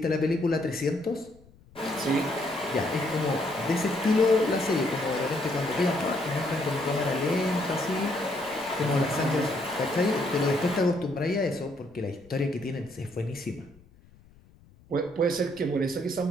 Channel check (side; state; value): left; noise; rumble, 27 dB below the sound